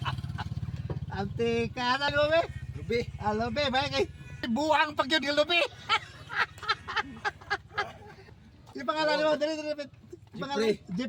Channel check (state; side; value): identical; both; correlation 1.00